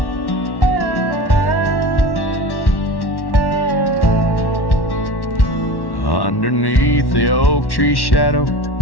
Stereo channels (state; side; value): late; right; 1.1 ms